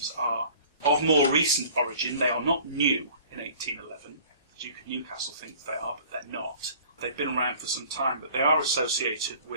are of more recent origin. They are not new in 1811. The Duke of Newcastle thinks they are, but they're not. They've been around for some time, but they are associated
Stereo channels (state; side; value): inverted; both; correlation -0.49